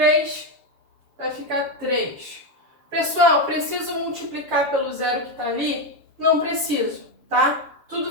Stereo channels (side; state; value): left; late; 7.1 ms